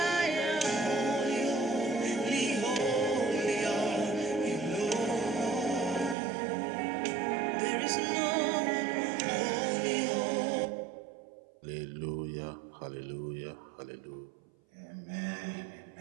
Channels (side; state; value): left; drops out; at 6.2 s